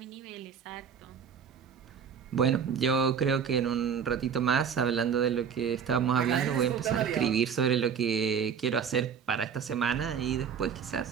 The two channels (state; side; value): quieter; left; 7.2 dB